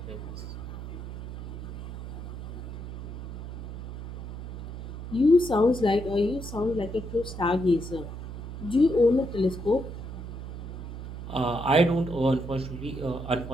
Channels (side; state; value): right; noise; hum, 8 dB below the sound